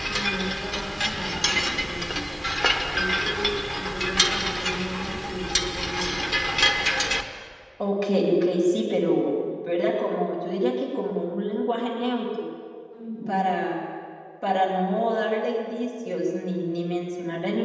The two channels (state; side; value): identical; both; correlation 1.00